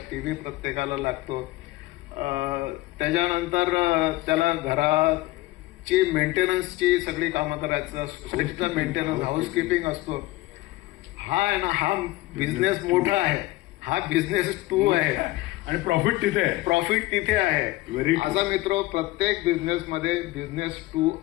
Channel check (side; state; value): right; quieter; 19.0 dB